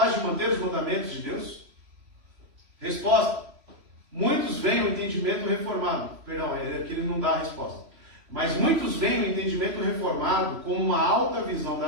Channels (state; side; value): late; left; 3.0 ms